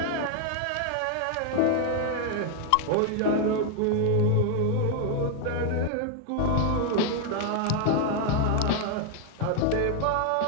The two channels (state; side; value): different; both; correlation 0.00